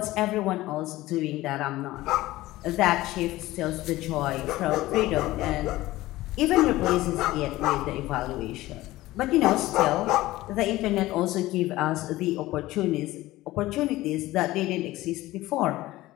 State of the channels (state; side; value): quieter; right; 17.3 dB